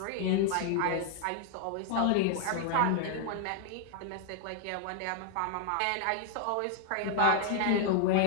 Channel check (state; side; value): different; both; correlation 0.00